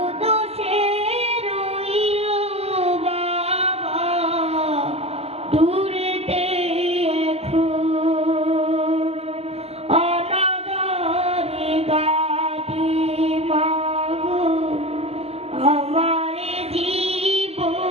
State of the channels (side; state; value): left; late; 0.29 ms